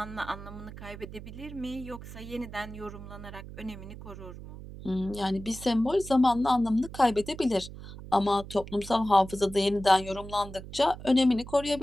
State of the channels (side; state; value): right; noise; hum, 13 dB below the sound